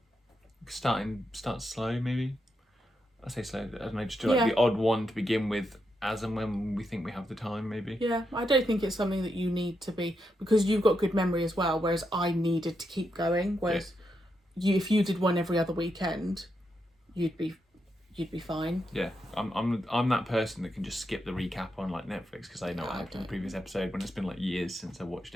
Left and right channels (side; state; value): both; normal; correlation 0.83